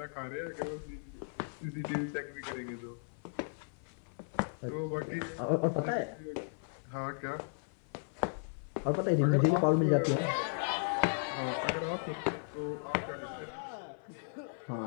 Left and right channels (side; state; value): right; silent; 54 dB below the other